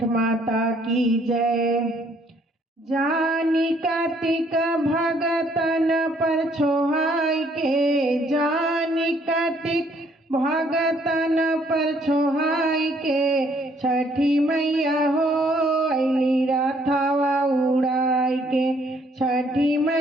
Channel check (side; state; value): both; normal; correlation 0.65